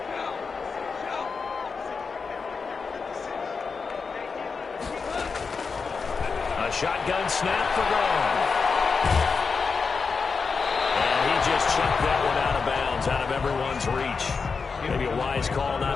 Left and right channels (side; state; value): right; quieter; 5.0 dB